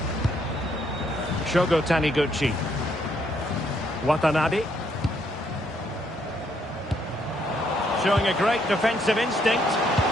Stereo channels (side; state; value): both; normal; correlation 0.71